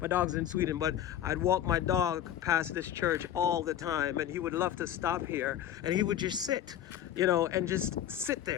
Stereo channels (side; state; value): right; quieter; 11.1 dB